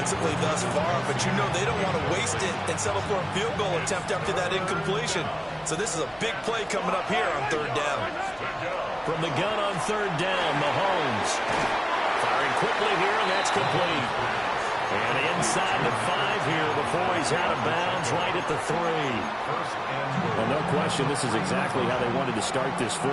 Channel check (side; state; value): both; identical; correlation 1.00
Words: thus far, but you know they don't want to waste it and settle for a field goal attempt after that incompletion. So this is a big play coming up here on 3rd down. From the gun on 3rd down, Mahomes. Firing quickly here, and that's complete. And inside the 5 here before he's out of bounds, right at the 3. Well, no question, this is exactly how they wanted to start this